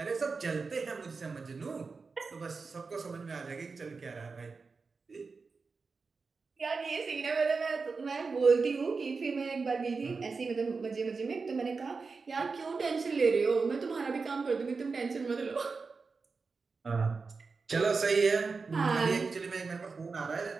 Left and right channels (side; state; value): left; quieter; 4.5 dB